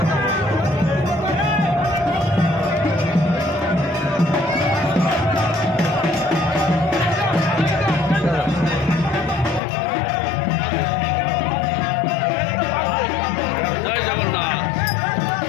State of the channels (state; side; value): drops out; right; at 9.6 s